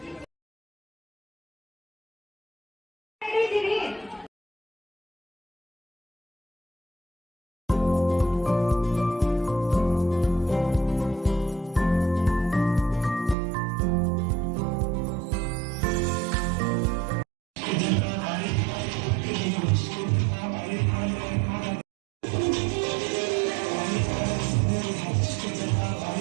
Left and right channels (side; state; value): left; drops out; at 13.4 s